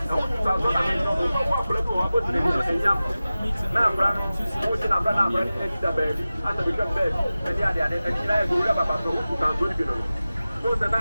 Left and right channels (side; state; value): both; inverted; correlation -0.96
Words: who are on walk let you up and young. Now, who's in a banana and the baby, and the become baby, and the other, and the other, whoever about those who are good. Who's the